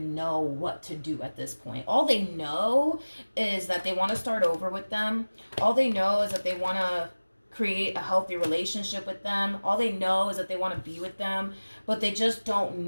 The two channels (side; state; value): both; inverted; correlation -1.00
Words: know what to do at this point. All they know is that they want to start over with them. All they know is that they want to create a healthy relationship with them. All they know is that they want to be with them, but they just don't